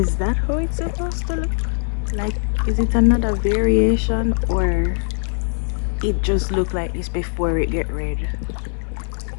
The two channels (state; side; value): silent; right; 65 dB below the other